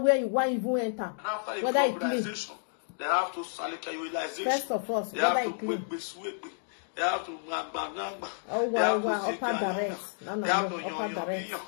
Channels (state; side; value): silent; right; digital silence